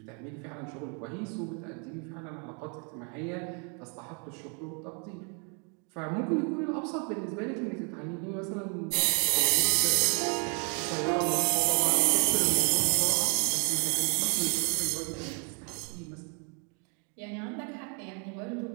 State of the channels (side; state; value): left; quieter; 37.4 dB